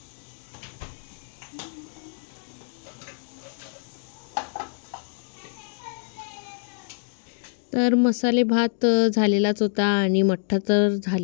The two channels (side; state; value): right; silent; digital silence